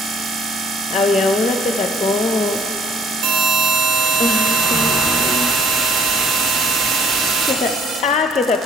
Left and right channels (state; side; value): normal; both; correlation 0.61